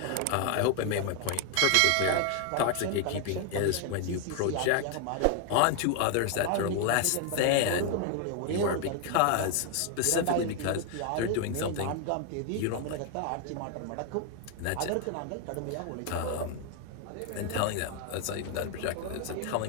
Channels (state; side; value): different; both; correlation 0.01